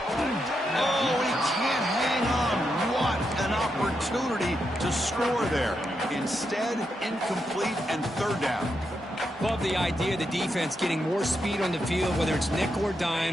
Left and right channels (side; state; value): both; normal; correlation 0.84